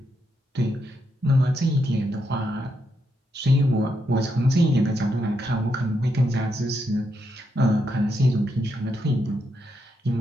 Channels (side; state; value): both; normal; correlation 0.81